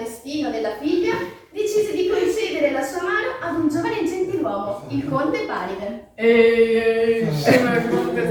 della figlia, decise di concedere la sua mano ad un giovane gentiluomo, il conte Paride. Ehi, sono il conte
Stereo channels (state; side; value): identical; both; correlation 1.00